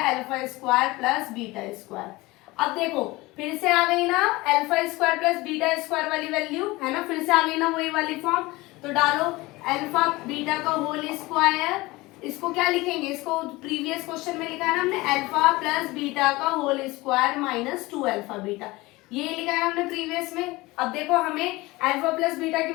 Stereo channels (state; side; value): quieter; right; 21.1 dB